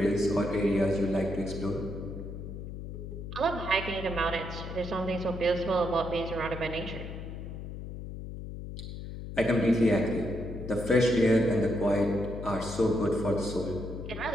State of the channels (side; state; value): left; noise; hum, 9 dB below the sound